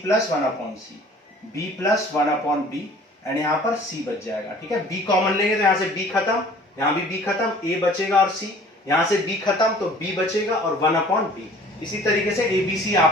plus 1/c, b plus 1/b and यहां पर c बच जाएगा। ठीक है, b कॉमन लेंगे तो यहां से b खत्म, यहां भी b खत्म, a बचेगा और c, यहां से b खत्म तो b बचेगा और 1/b। इसी तरीके से a b c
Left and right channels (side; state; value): both; normal; correlation 0.50